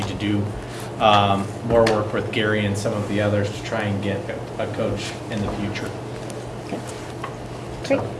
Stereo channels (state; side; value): identical; both; correlation 1.00